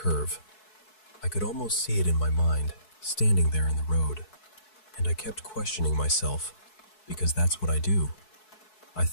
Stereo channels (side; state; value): right; late; 4.7 ms